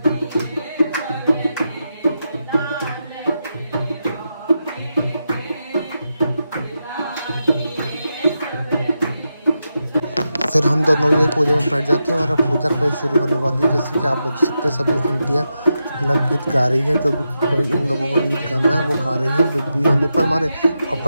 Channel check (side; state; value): both; inverted; correlation -0.87